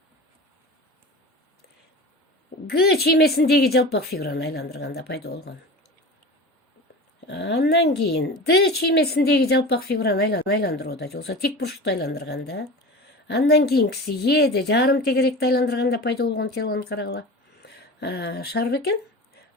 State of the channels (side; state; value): both; normal; correlation 0.33